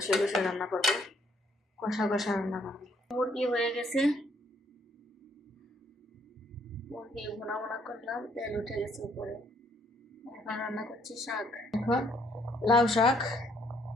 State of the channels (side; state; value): both; normal; correlation 0.67